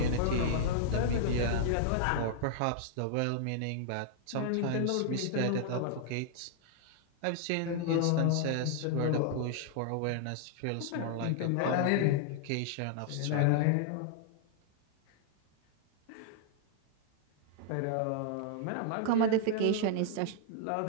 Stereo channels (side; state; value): both; different; correlation -0.01